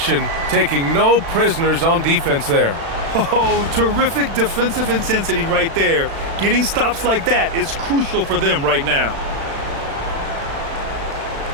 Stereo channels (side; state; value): left; late; 36 ms